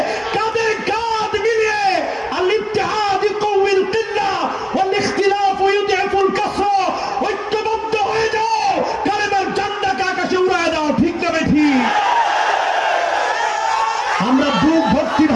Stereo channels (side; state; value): both; identical; correlation 1.00